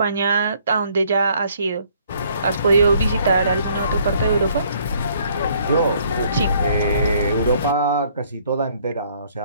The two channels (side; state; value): both; inverted; correlation -0.63